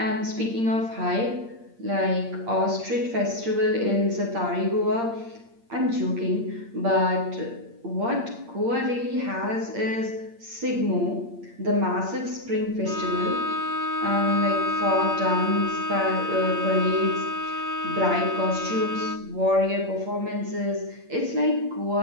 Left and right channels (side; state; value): left; late; 8.7 ms